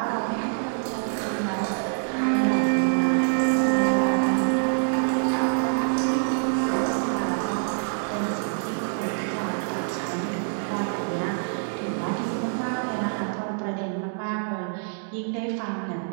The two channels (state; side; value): silent; left; digital silence